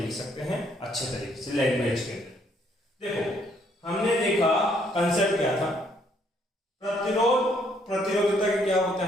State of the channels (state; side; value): normal; both; correlation 0.68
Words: सकते हैं अच्छे तरीके से लैंग्वेज के अंदर। देखो, हमने देखा कंसेप्ट क्या था? प्रतिरोध प्रतिरोधकता क्या होता